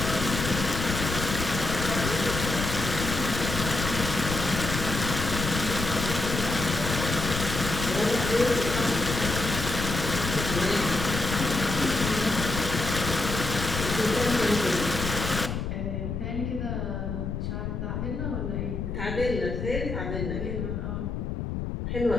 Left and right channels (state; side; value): noise; left; rumble, 4 dB below the sound